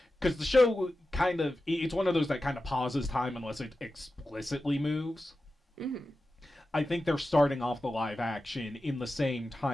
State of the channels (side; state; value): both; normal; correlation 0.93